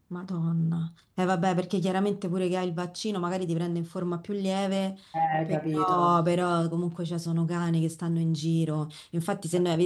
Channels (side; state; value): both; identical; correlation 1.00